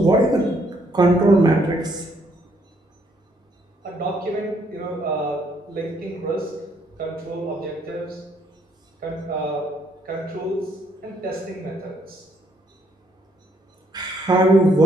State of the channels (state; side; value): normal; both; correlation 0.70